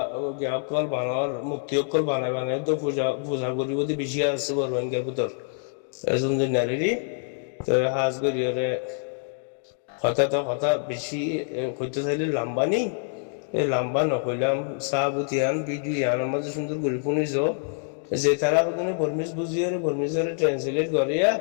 জ্ঞাপকল বানার মুক্তি অকল বানাই বানাই তো পূজা পূজা করিব বেশি আছে বড় রোহিঙ্গার ভিতর এজন যে নারী তো হাজ করিয়রে কথা বেশি কইতে চাইলে লাম্বা নেই এই লাম্বা নকইলাম চাহ বুতিয়ান ভিডিও ইয়ান মাঝে সুন্দর করে শুনিছ যে তারা ওখানে বর্মিজ বুঝিয়ে বর্মিজের ট্রান্সলেট করিয়া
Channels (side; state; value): right; silent; 59 dB below the other